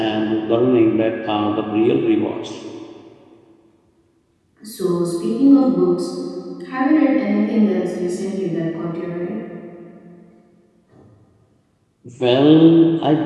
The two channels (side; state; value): both; identical; correlation 1.00